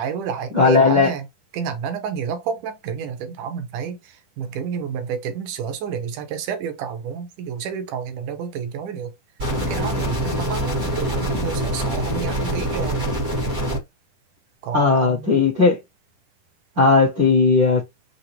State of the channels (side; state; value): left; late; 10 ms